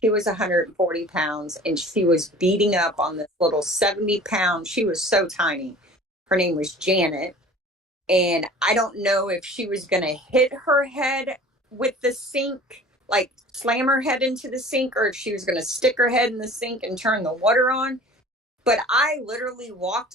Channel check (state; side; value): normal; both; correlation 0.44